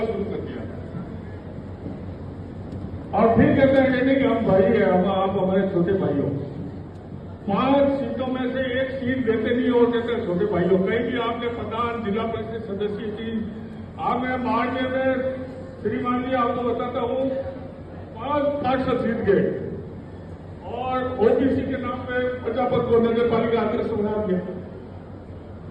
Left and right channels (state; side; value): identical; both; correlation 1.00